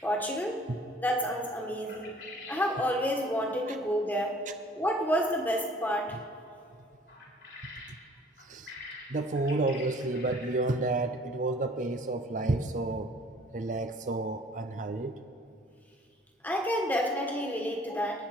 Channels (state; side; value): normal; both; correlation 0.54